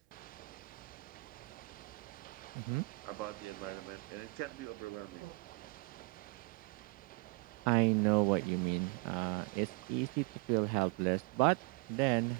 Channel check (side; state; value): left; quieter; 26.2 dB